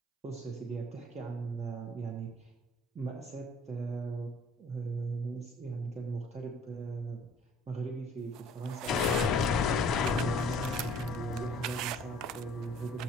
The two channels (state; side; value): normal; both; correlation 0.54